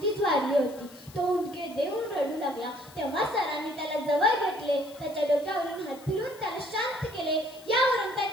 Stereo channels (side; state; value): left; noise; hiss, 22 dB below the sound